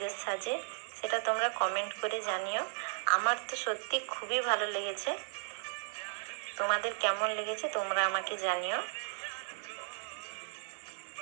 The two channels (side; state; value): left; silent; digital silence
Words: সাজে সেটা তোমরা কমেন্ট করে জানিও। আমার তো সত্যি খুবই ভালো লেগেছে, তোমাদের কেমন লেগেছে তোমরা আমাকে জানিও।